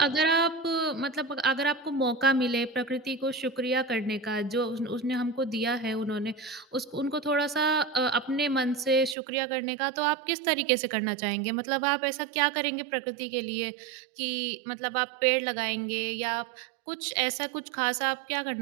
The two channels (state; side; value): drops out; left; at 9.2 s